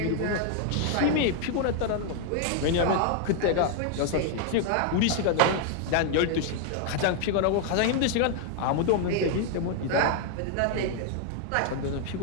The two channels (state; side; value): different; both; correlation 0.00